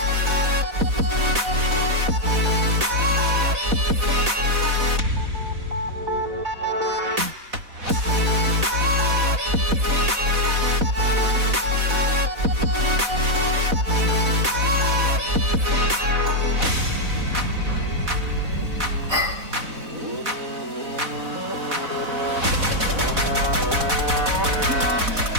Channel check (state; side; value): late; left; 4.1 ms